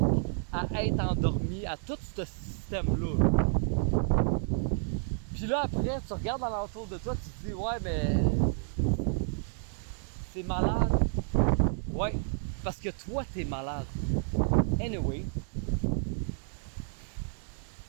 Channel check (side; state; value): left; silent; 57 dB below the other